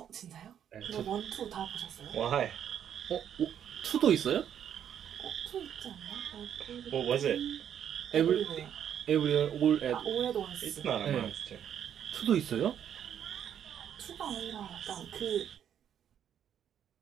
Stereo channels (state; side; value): quieter; left; 9.3 dB